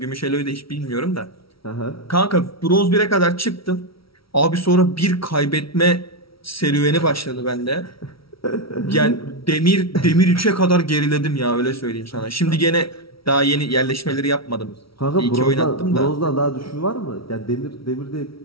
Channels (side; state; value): right; late; 0.75 ms